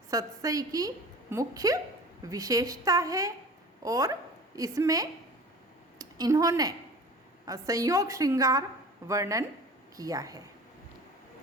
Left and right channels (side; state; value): both; normal; correlation 0.39